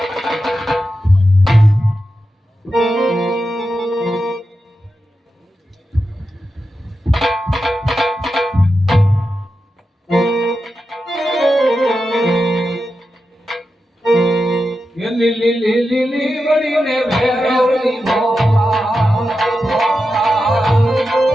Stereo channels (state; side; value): normal; both; correlation 0.90